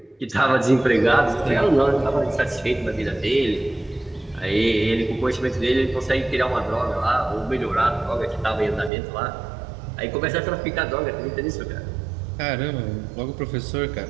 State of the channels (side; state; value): left; drops out; at 8.9 s